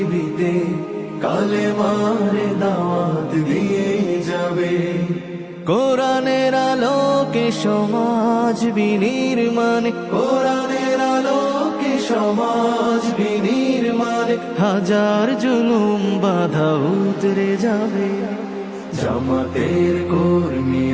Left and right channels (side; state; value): both; identical; correlation 1.00